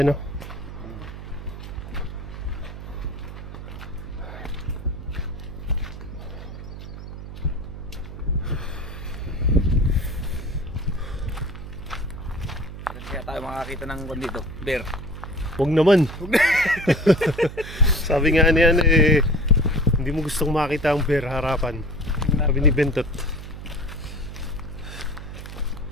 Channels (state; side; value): noise; right; hum, 11 dB below the sound